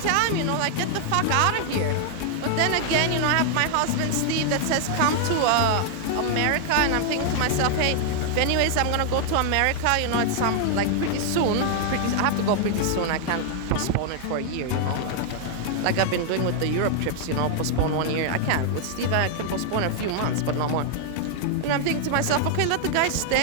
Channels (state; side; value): different; both; correlation 0.00